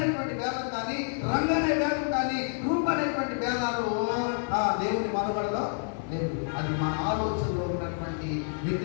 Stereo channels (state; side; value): silent; right; 59 dB below the other